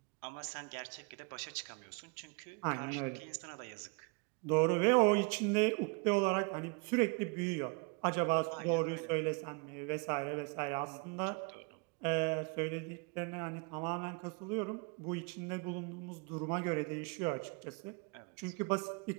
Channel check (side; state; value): left; quieter; 32.8 dB